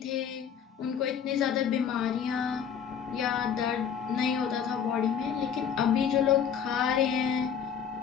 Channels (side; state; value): right; quieter; 7.7 dB